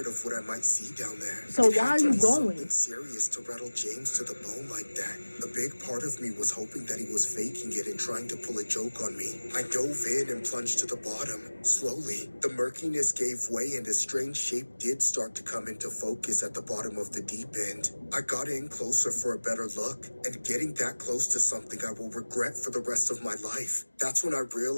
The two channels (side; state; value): both; inverted; correlation -1.00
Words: of what I might see down there. So It why had are to you be going? something serious to rattle James to the bone like that. A big part of me was hoping that he was faking it and trying to pull a joke on me. I dove in and plunged to the bottom. Slowly, the murkiness gave way and a strange shape did start to come into focus at the bottom of the deep end. I got in closer for a better look, and getting that close to something I will regret for the rest of my life. That's when I